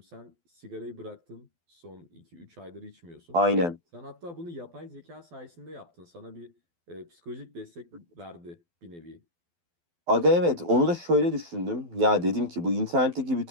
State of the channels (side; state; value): left; late; 12 ms